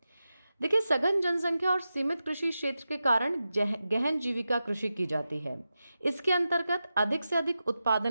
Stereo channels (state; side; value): inverted; both; correlation -0.92